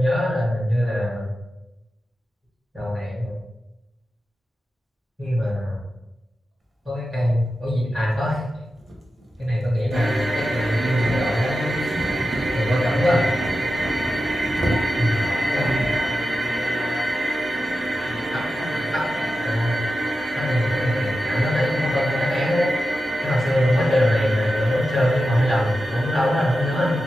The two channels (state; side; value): normal; both; correlation 0.91